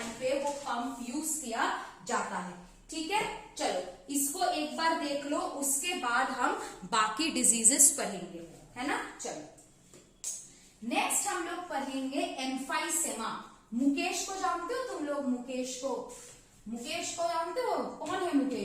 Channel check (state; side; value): identical; both; correlation 1.00